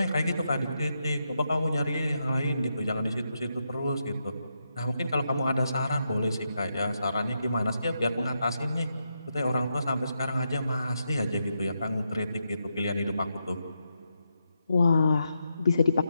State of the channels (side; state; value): both; inverted; correlation -0.84